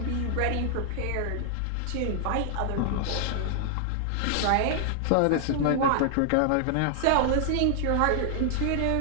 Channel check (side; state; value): both; different; correlation 0.00